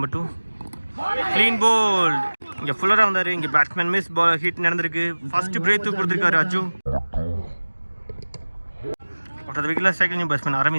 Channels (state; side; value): inverted; both; correlation -1.00